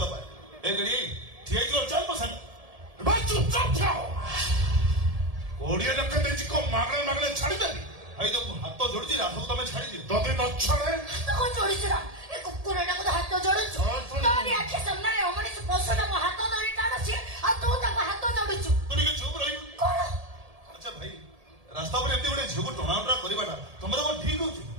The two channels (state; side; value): late; left; 1.7 ms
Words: ପାଏ। ଏ ଗଡି ଠିଆ ହେଇଯିବ ଚାଲ ମୋ ସାଙ୍ଗ। ଭାଇ ଚୁପଚାପ ଥାଅ 20 ଲକ୍ଷ ଦେଇଛି କଣ ମାଗଣା ମାଗଣା ଛାଡ଼ିଦେବି ଭାଇ ତ ମୁଁ ହାତ ଯୋଡୁଛି ରାଧକୁ ତମେ ଛାଡିଦିଅ। ଯଦି ନ ଛାଡ଼େ ତାକୁ ଯୋଡ଼ିଛୁ ନା ଏ କୁକୁରଟାକୁ ତ ହାତ ଯୋଡୁଛୁ ତୋରି ଆଖି ସାମ୍ନାରେ ଅମଣିଷ ପଶୁଟା ମୋ ହାତ ଧରି ଟାଣୁଛି ଆଉ ତୁ ତାକୁ ହାତ ଯୋଡୁଛୁ ତୁ ଟିକେ ଚୁପ ରହିବୁ। କଣ ଆଚ୍ଛା ଭାଇ ରାସ୍ତା ଉପରେ ଏମିତି ଗୋଟେ ଝିଅକୁ ଟଣାଉଟରା କରିବାଟା ତମର କଣ ଠିକ ହଉଛି?